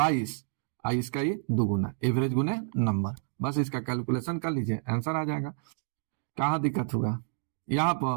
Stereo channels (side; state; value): left; silent; digital silence